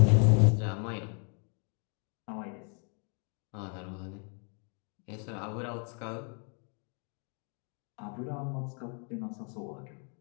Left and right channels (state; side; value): quieter; right; 39.7 dB